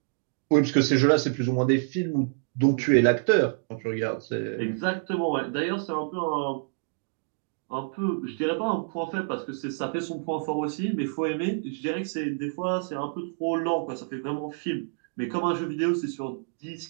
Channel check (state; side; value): silent; left; digital silence